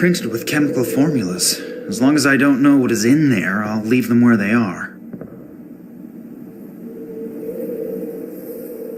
with chemical formulas. As long as I don't know what is in there, I'll leave them where they are.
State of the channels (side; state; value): both; identical; correlation 1.00